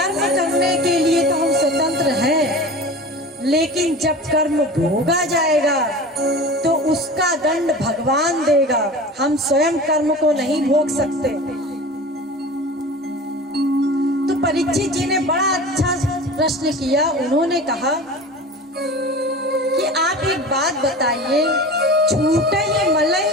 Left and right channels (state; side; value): normal; both; correlation 0.35